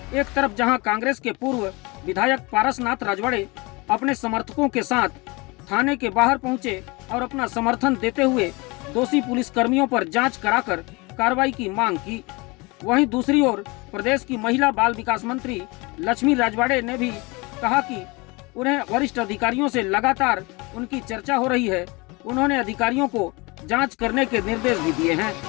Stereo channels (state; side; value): quieter; right; 26.0 dB